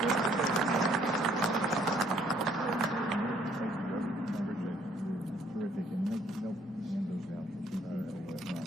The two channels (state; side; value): normal; both; correlation 0.64